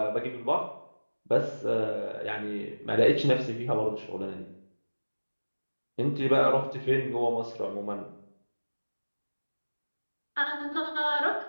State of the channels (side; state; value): both; inverted; correlation -1.00